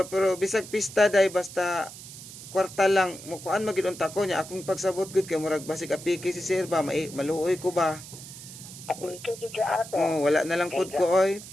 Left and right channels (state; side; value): noise; right; hiss, 14 dB below the sound